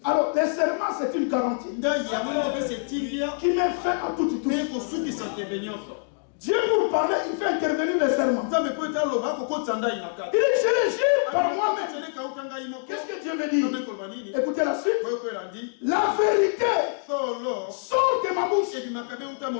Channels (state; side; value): silent; right; digital silence